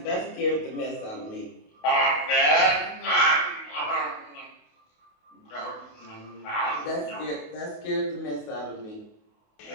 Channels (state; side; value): late; right; 28 ms